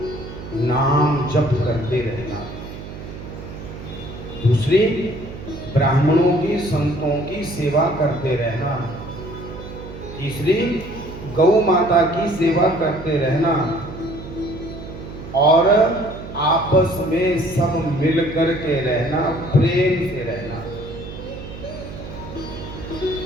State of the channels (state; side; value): noise; right; hum, 12 dB below the sound